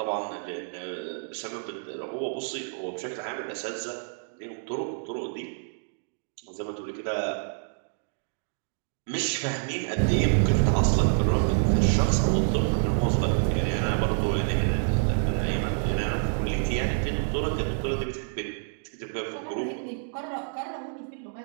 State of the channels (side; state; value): left; silent; digital silence